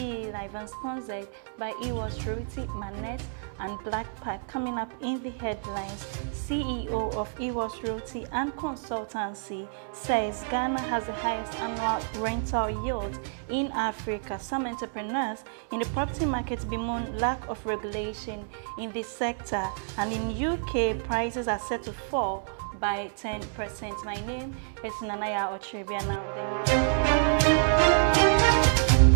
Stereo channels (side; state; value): left; silent; digital silence